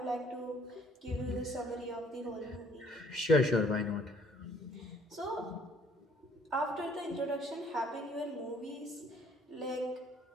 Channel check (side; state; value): both; normal; correlation 0.60